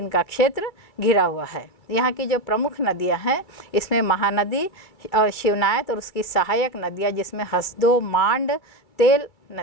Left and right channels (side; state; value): right; late; 2.3 ms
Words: का क्षेत्र घिरा हुआ है। यहाँ की जो प्रमुख नदियाँ हैं, इसमें महानदी और शिवनायत और उसकी सहायक नदियाँ जिसमें हसदो, मांड, तेल